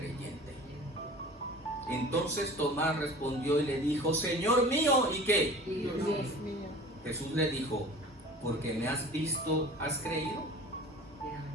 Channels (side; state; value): both; normal; correlation 0.41